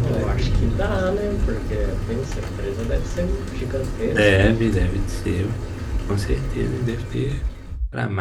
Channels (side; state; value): both; identical; correlation 1.00